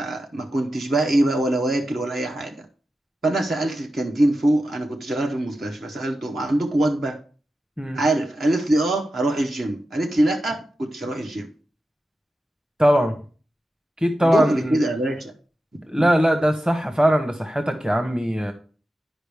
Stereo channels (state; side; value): normal; both; correlation 0.91